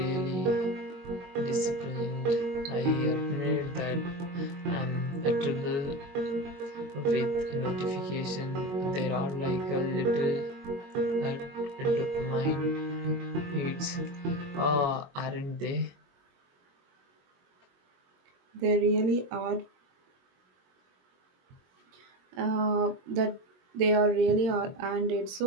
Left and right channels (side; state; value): left; late; 22 ms